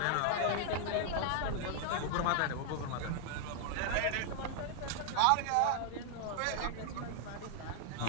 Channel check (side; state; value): both; different; correlation 0.00